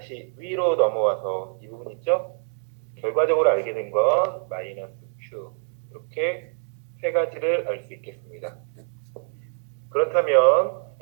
위로 넘어와서 이 부분 있죠? 결과적으로 알게 된 건 마이너스 Q, 이렇게 세 가지를 알 수 있겠습니다. 그렇다면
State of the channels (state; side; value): silent; left; digital silence